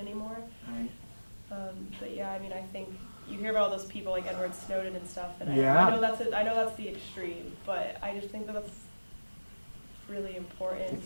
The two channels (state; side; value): inverted; both; correlation -1.00